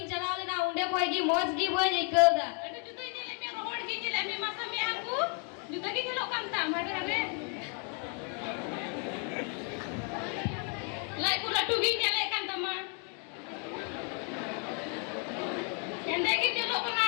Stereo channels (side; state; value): right; quieter; 39.8 dB